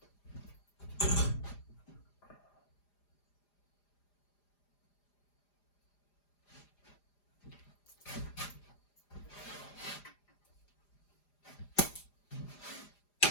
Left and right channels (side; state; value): right; late; 4.9 ms